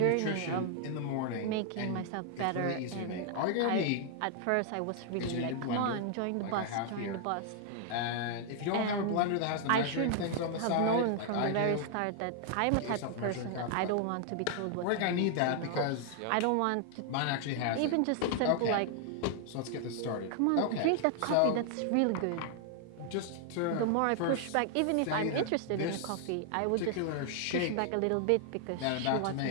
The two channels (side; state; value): both; different; correlation 0.00